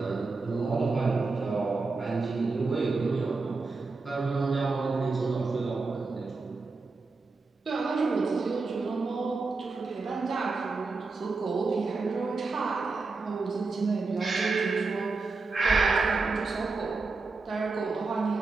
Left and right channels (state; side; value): quieter; left; 4.0 dB